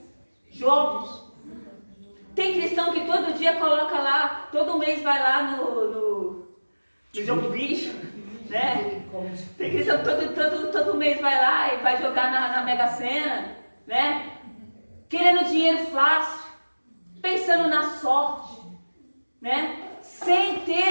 Jogos. Tem cristão que todo dia coloca lá, todo mês vai lá no jogo bicho, né? Tem cristão que todo mês vai lá e vai jogar na Mega Sena, né? Querendo dinheiro fácil, pensando na sorte, né? Sem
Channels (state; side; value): inverted; both; correlation -1.00